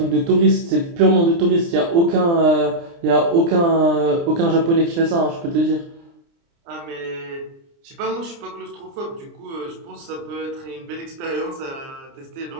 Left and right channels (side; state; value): left; late; 29 ms